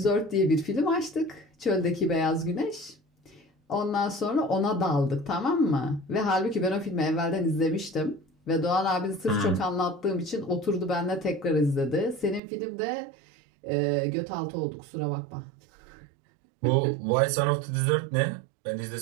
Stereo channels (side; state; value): left; drops out; at 12.4 s